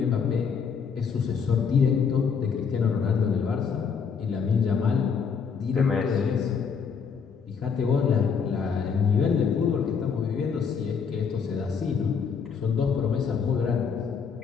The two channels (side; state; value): right; quieter; 6.2 dB